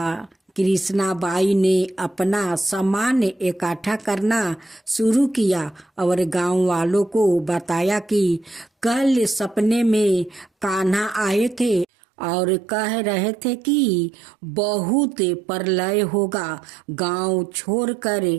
कृष्णा बाई ने अपना सामान इकट्ठा करना शुरू किया और गांव वालों को बताया कि कल सपने में कान्हा आए थे और कह रहे थे कि बहुत प्रलय होगा। गांव छोड़कर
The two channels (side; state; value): left; drops out; at 11.9 s